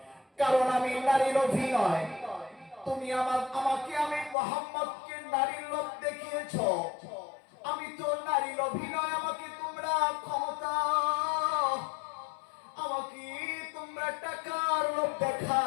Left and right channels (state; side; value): drops out; right; at 4.4 s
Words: কারণ আমি নারীর লোভী নয়। তুমি আমাকে আমি মুহাম্মদকে নারীর লোভ দেখিয়েছো, আমি তো নারী লোভী নয়। আমাকে তোমরা ক্ষমতা, আমাকে তোমরা টাকার লোভ